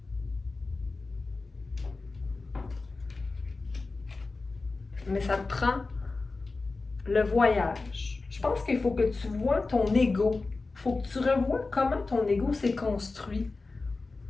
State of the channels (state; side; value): quieter; right; 3.7 dB